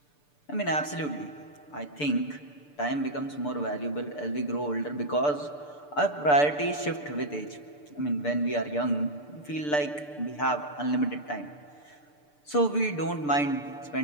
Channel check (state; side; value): late; right; 6.8 ms